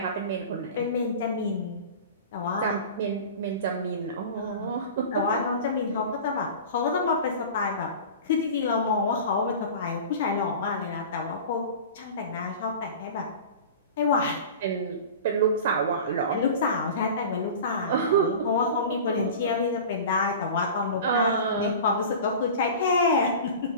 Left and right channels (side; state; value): both; inverted; correlation -0.35